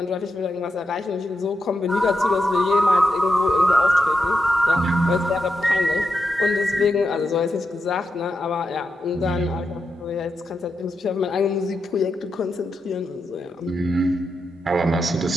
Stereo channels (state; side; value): normal; both; correlation 0.86